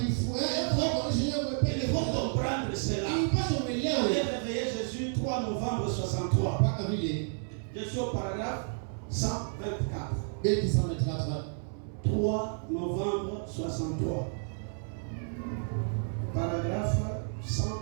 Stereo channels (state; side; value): silent; left; 57 dB below the other